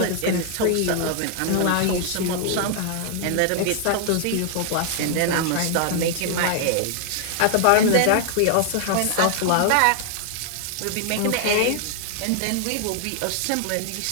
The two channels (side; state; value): both; different; correlation 0.00